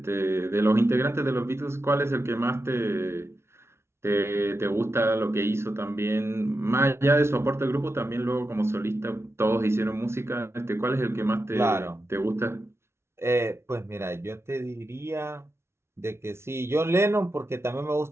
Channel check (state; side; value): late; left; 0.12 ms